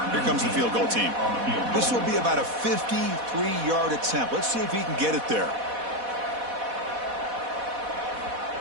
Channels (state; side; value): late; left; 4.1 ms